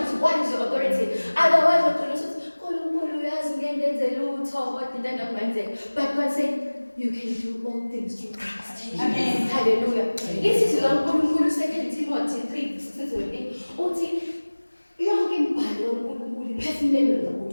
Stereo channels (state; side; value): inverted; both; correlation -1.00